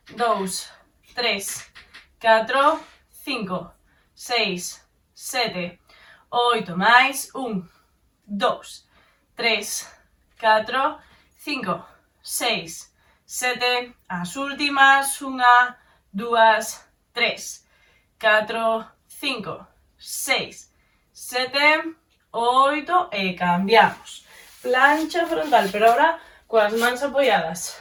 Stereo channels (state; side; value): identical; both; correlation 1.00